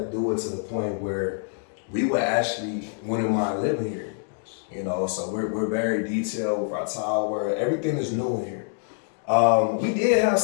do it to the point where we would actually wouldn't mind living here. You know, so we're very detailed with our tile work. Everything is new in here. We did have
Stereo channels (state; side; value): silent; right; digital silence